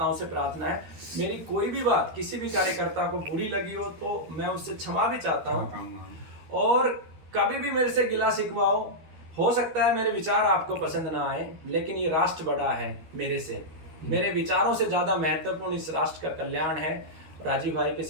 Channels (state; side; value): late; left; 13 ms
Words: से प्रार्थना है। मेरी कोई भी बात किसी भी कार्यकर्ता को बुरी लगी हो तो मैं उससे क्षमा भी चाहता हूँ, और कभी भी मेरे से गिला शिकवा हो सकता है मेरे विचार आपको पसंद ना आए, लेकिन ये राष्ट्र बड़ा है मेरे से, मेरे विचारों से ज्यादा महत्वपूर्ण इस राष्ट्र का कल्याण है। राजीव भाई के